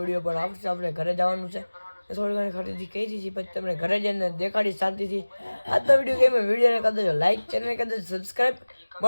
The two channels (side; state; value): both; inverted; correlation -1.00